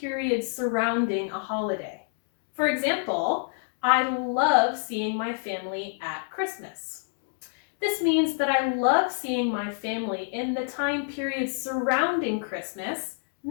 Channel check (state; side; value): silent; right; digital silence